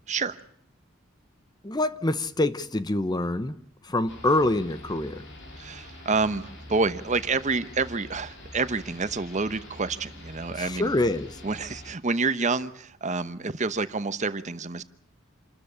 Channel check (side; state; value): both; normal; correlation 0.37